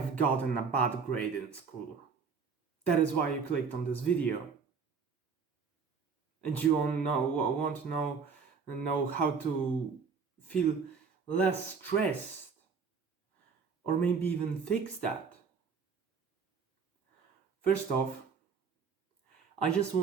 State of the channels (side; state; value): left; quieter; 5.6 dB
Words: gotten a bad grade in school. That is why you clicked on this video. And you want to know how to feel less stressed, or maybe even fix that. First off, I just